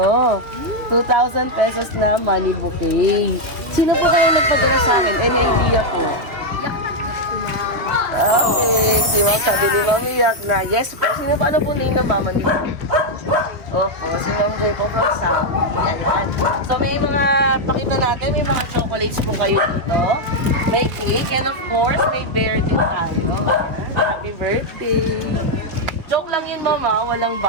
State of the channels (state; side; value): late; left; 2.8 ms